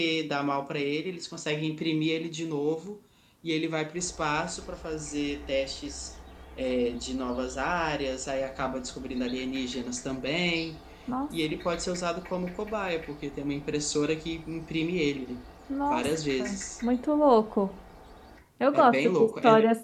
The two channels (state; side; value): identical; both; correlation 1.00